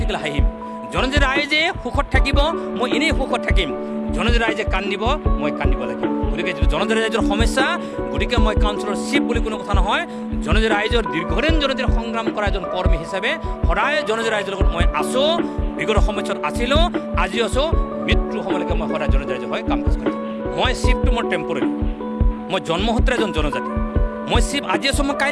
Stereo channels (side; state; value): both; identical; correlation 1.00